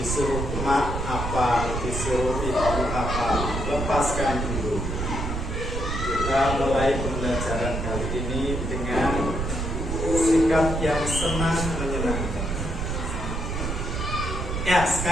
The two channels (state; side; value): noise; right; rumble, 3 dB below the sound